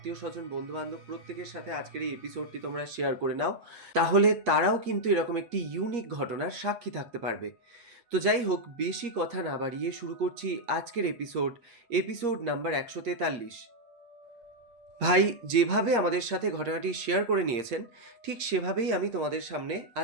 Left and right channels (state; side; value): late; left; 8.5 ms